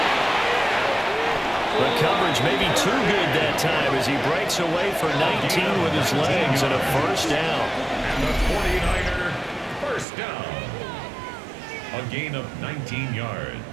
The coverage may be too good that time as he breaks away for 19 with his legs and a first down. And the 49er first down. A gain of 19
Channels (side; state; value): left; drops out; at 10.1 s